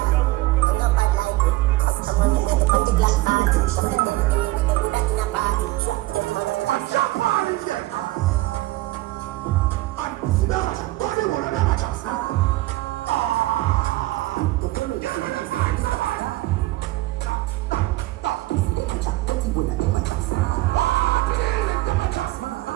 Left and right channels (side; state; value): left; quieter; 18.5 dB